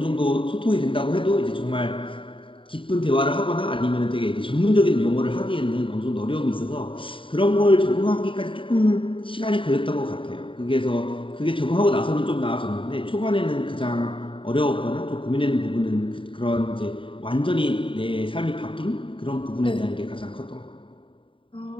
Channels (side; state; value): right; late; 0.25 ms